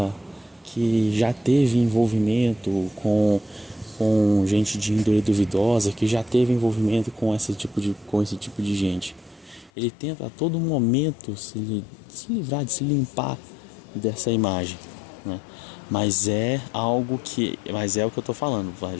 que já teve envolvimento com gente de índole duvidosa, que já teve envolvimento com esse tipo de gente. Ele tenta a todo momento se livrar, de se limpar dessa imagem, Mas é o que eu tô falando.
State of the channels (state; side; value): drops out; right; at 9.7 s